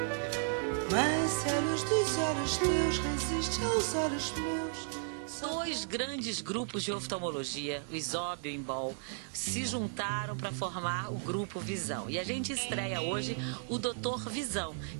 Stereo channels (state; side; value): silent; left; digital silence